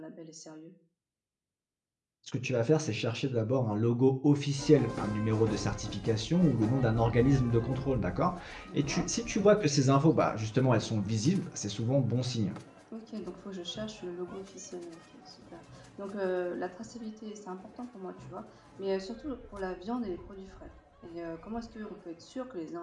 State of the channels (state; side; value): identical; both; correlation 1.00